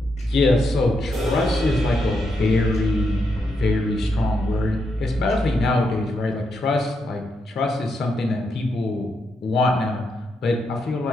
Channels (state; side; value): normal; both; correlation 0.82